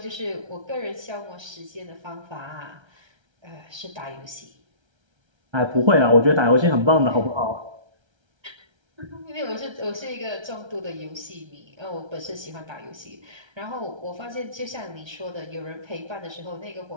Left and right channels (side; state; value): left; late; 1.3 ms